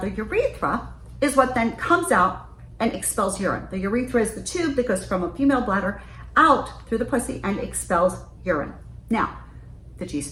urethra is what then comes out and expels urine. The urethra is the tube that goes from a female bladder out through the pussy and expels urine. Now, the G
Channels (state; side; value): identical; both; correlation 1.00